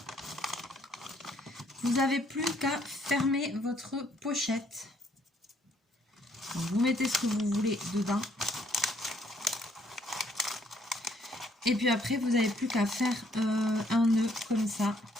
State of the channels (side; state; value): both; normal; correlation 0.67